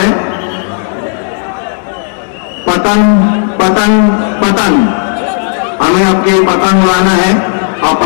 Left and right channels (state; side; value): silent; right; 62 dB below the other